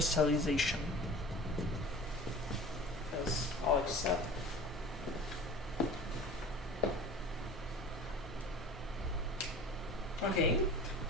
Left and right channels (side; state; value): both; normal; correlation 0.40